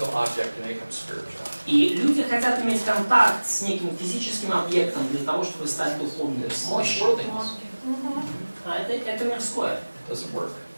object to make them spiritual. И люди хотят иметь контакт с неким физическим объектом для того, чтобы стать духовным. It's Мощь. worldliness. А это мирское. It doesn't work.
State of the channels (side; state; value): both; inverted; correlation -1.00